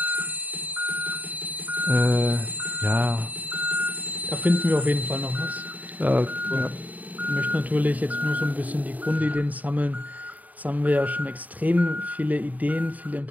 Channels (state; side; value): late; left; 0.075 ms